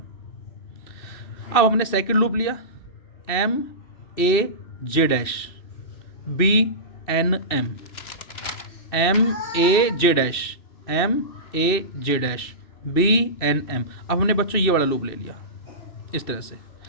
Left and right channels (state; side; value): late; right; 2.7 ms